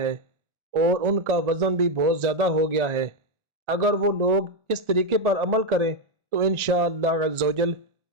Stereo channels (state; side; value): late; left; 1.4 ms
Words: اور ان کا وزن بھی بہت زیادہ ہو گیا ہے، اگر وہ لوگ اس طریقے پر عمل کریں تو انشاءاللہ عز و جل